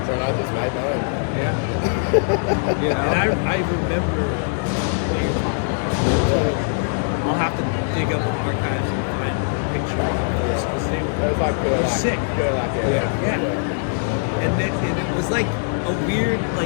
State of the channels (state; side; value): silent; right; 65 dB below the other